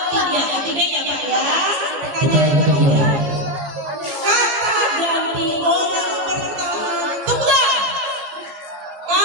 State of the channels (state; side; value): late; left; 14 ms